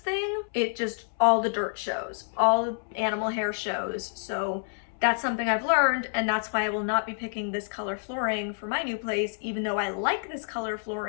it just, all the dirt shows, all the animal hair shows. So that's something I've learned, and that's why I will not be picking this color flooring for my new place, even though I like this color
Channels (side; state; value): right; silent; 59 dB below the other